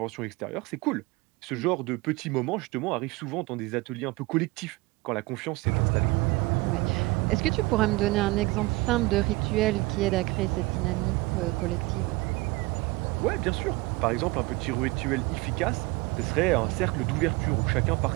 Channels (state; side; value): quieter; left; 22.6 dB